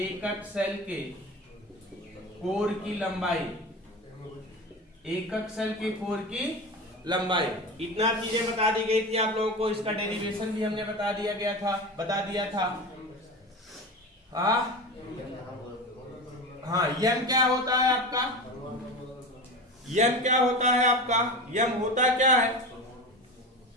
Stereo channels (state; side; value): normal; both; correlation 0.27